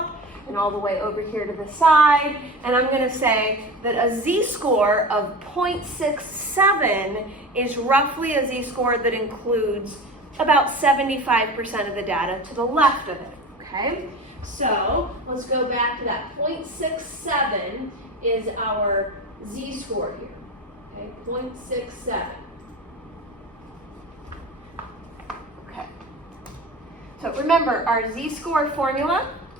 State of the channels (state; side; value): normal; both; correlation 0.31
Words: and all the way over here to the side. And I'm going to say that a z-score of 0.67 is roughly a z-score that includes about 75% of the data to the left of it, okay? So let's go back to that. 0.67 is our z-score here, okay? 0.67. Okay. So remember, our z-score formula